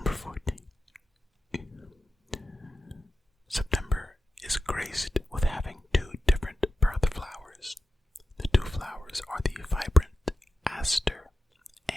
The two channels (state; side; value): normal; both; correlation 0.91